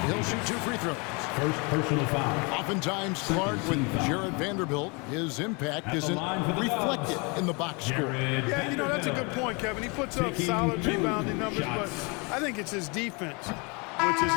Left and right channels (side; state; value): right; quieter; 30.5 dB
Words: He'll shoot 2 free throws. First personal foul. Oftentimes, Clark, with Jared Vanderbilt, his impact isn't reflected in the box score. Yeah, you know, that's a good point, Kevin. He puts up solid rebounding numbers, but I think it's his defense, which is